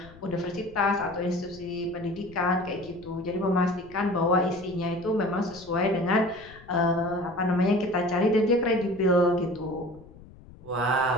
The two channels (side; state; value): left; noise; rumble, 21 dB below the sound